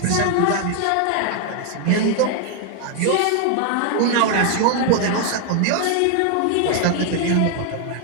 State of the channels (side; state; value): both; different; correlation 0.00